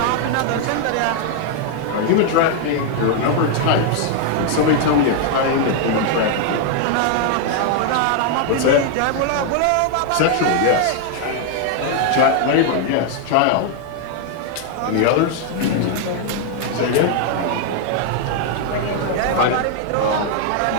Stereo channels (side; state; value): both; different; correlation 0.00